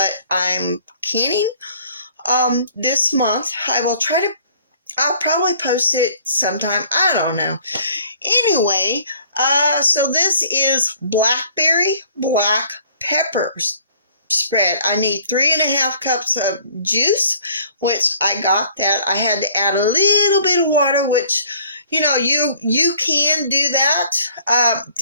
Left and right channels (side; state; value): both; inverted; correlation -0.56